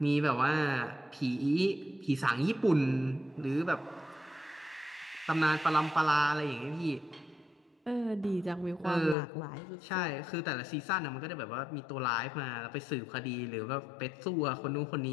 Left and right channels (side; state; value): right; drops out; at 9.2 s